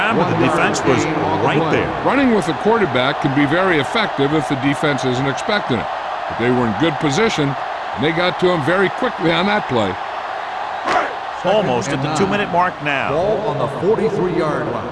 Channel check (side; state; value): both; identical; correlation 1.00